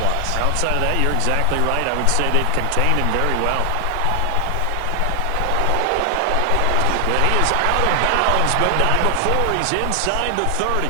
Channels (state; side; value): different; both; correlation 0.00